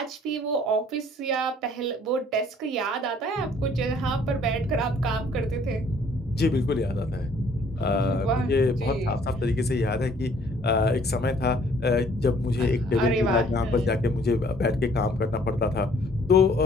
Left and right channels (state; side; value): normal; both; correlation 0.59